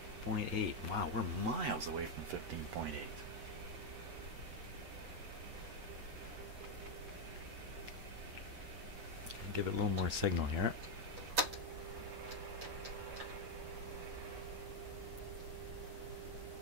Wow, we're miles away from 15.8. Give it a little more signal here.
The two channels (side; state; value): left; late; 8.1 ms